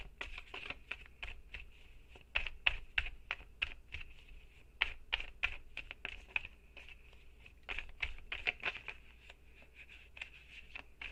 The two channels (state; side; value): identical; both; correlation 1.00